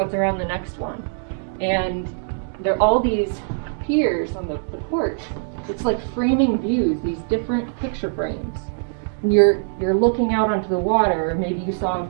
around the next one. And there are all these piers on the porch. It's like framing views, these different picture frames. And you're looking out onto the water, or maybe you saw a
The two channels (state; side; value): silent; left; digital silence